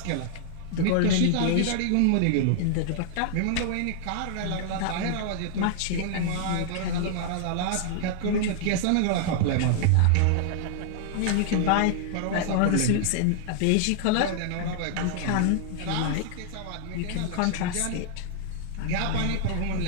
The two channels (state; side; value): different; both; correlation -0.01